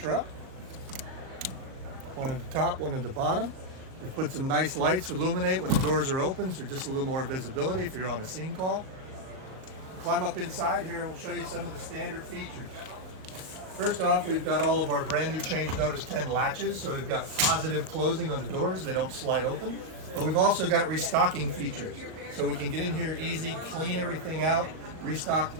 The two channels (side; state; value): left; late; 38 ms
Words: One at the top, one at the bottom. We've put some nice lights to illuminate when the doors are open, so just a little more visibility if you're on a scene call. Climb up inside here and we'll show you some of the standard features. First off, we've got all of our brand new Change Notice 10 latches, so we've got positive closing on the doors, they don't slide open. But we've also got restocking features, so we can get in here easy, clean everything out, restock the